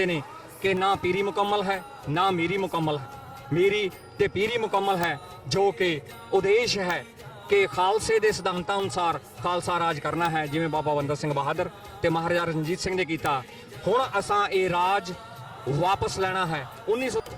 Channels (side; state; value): both; identical; correlation 1.00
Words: ਨੇ ਕਿ ਨਾ ਪੀਰੀ ਮੁਕੰਮਲ ਹੈ, ਨਾ ਮੀਰੀ ਮੁਕੰਮਲ ਹੈ। ਮੀਰੀ ਤੇ ਪੀਰੀ ਮੁਕੰਮਲ ਹੈ, ਜੋ ਕਿ ਉਦੇਸ਼ ਹੈ ਕਿ ਖਾਲਸੇ ਦੇ ਸਿਧਾਂਤਾਂ ਅਨੁਸਾਰ ਖਾਲਸਾ ਰਾਜ ਕਰਨਾ ਹੈ, ਜਿਵੇਂ ਬਾਬਾ ਬੰਦਾ ਸਿੰਘ ਬਹਾਦਰ ਤੇ ਮਹਾਰਾਜਾ ਰਣਜੀਤ ਸਿੰਘ ਨੇ ਕੀਤਾ। ਹੁਣ ਅਸਾਂ ਇਹ ਰਾਜ ਵਾਪਸ ਲੈਣਾ ਹੈ। 1900